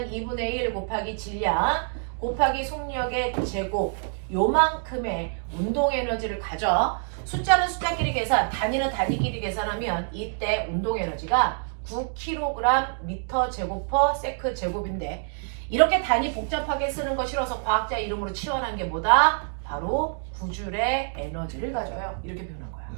2분의 1 곱하기 질량 곱하기 속력의 제곱 요만큼의 운동 에너지를 가져. 숫자는 숫자끼리 계산 단위는 단위끼리 계산하면 이때 운동 에너지가 9kg 미터 제곱 퍼 세크 제곱인데 이렇게 단위 복잡하게 쓰는 거 싫어서 과학자 이름으로 치환한 게 뭐다? 바로 구줄의 에너지를 가져요. 이렇게 표현한 거야.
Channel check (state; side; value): silent; left; 61 dB below the other